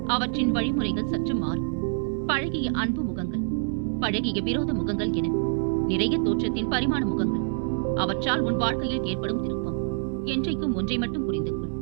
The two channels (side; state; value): left; silent; 61 dB below the other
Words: அவற்றின் வழிமுறைகள் சற்று மாறும். பழகிய அன்பு முகங்கள், பழகிய விரோத முகங்கள் என நிறைய தோற்றத்தின் பரிமாண முகங்கள். அவற்றால் உன் வாழ்க்கையில் ஏற்படும் திருப்பம். என்றைக்கும் ஒன்றை மட்டும் புரிந்து கொள்,